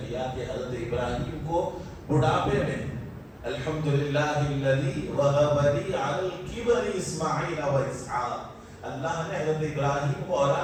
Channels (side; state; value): both; identical; correlation 1.00